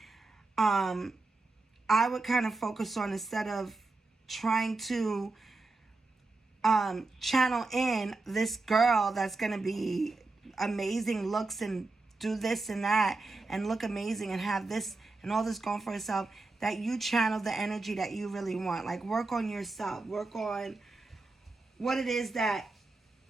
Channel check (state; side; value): quieter; left; 3.4 dB